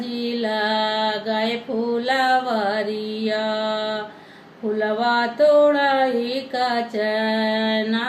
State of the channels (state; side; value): identical; both; correlation 1.00